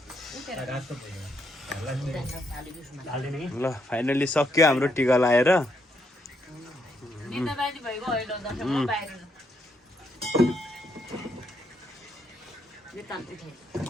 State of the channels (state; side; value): normal; both; correlation 0.76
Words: उठेर रातो ल फाइनली सक्यो हाम्रो टिका लाएर निन्दा बानी भएको होइन दसैँमा बाहिर